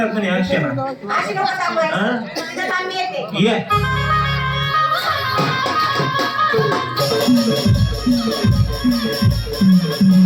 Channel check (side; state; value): both; identical; correlation 1.00